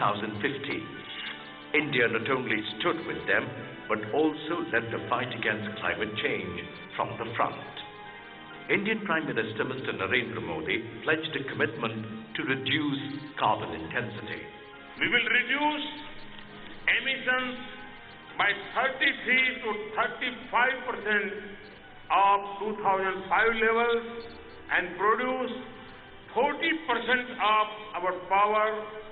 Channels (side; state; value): both; identical; correlation 1.00